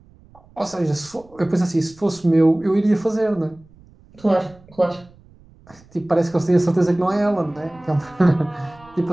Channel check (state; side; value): noise; right; rumble, 27 dB below the sound